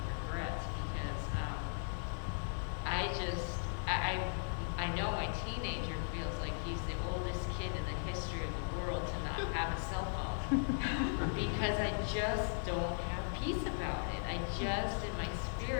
regrets, because I know my teenager feels like he's the oldest kid in the history of the world to not have a cell phone because I just don't have peace about it. In my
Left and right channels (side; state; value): right; silent; digital silence